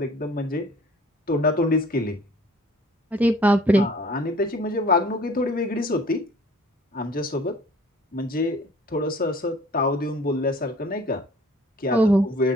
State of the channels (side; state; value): both; normal; correlation 0.51